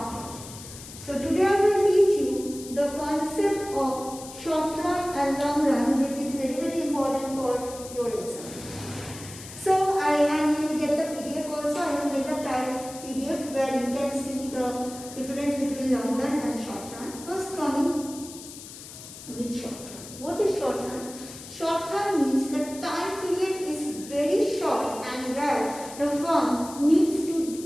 So today I will teach you the concept of short run and long run, which is very important for your exam. So and you will get the PDF also. I will get the type PDF where you can see the difference between long run and short run. First coming with short run. What is short run? Short run means the time period is very short and where the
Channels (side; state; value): left; noise; hiss, 14 dB below the sound